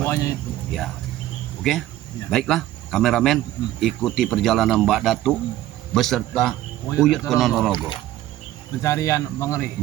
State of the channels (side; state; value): left; quieter; 14.2 dB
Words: itu. Ya, oke. Ya. Baiklah, kameramen, ikuti perjalanan Mbak Datuk beserta Uyut Ponorogo. Pencarian Bangrai,